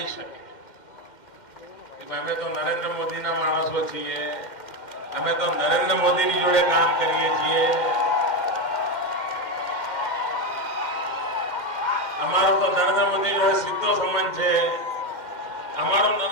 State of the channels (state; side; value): late; right; 2.1 ms